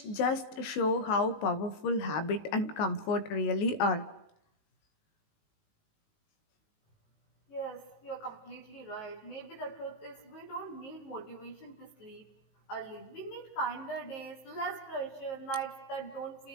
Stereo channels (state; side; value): late; right; 19 ms